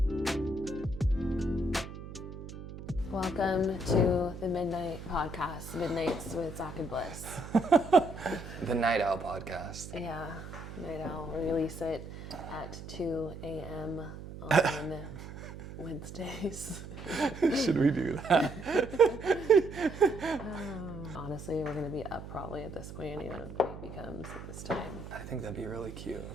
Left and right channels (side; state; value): right; noise; hum, 11 dB below the sound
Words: Welcome to the Midnight Podcast, Midnights with Zack and Bliss. The Night Owl Podcast. Yeah, Night Owl. We release it at 2 a.m. on Wednesdays. Should we do that? Honestly, we're going to be up probably at this point, even if it becomes this time. I think that'd be really cute